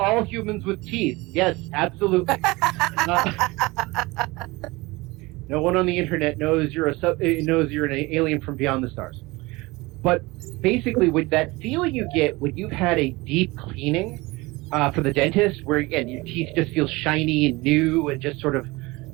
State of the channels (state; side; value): quieter; left; 22.6 dB